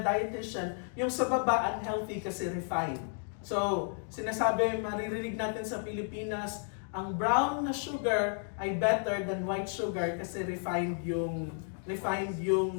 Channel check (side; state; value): right; silent; 56 dB below the other